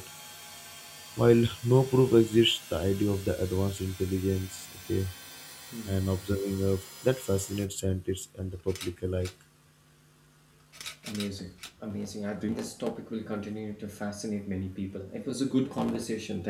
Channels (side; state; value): both; identical; correlation 1.00